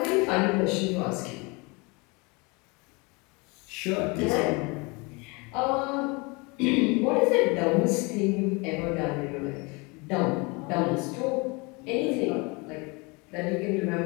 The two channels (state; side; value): quieter; right; 28.0 dB